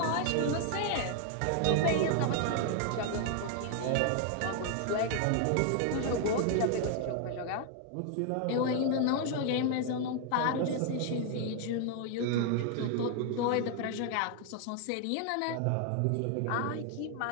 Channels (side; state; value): both; different; correlation 0.00